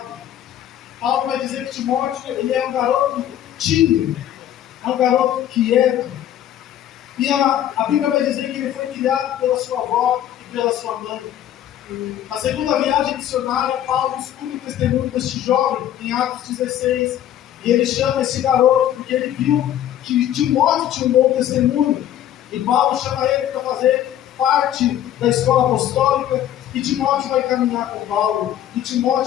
Paulo vai dizer que Timóteo ele é um garoto tímido, é um garoto quieto. E a Bíblia vai dizer que ele foi criado pela sua avó e pela sua mãe. Na segunda viagem missionária, Paulo escuta o testemunho deste jovem, em Atos 16, e ele chama esse garoto porque ele viu que Timóteo tinha um bom testemunho. E Paulo chama ele para fazer parte da escola apostólica, e Timóteo vai caminhar com Paulo, e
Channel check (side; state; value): right; quieter; 11.4 dB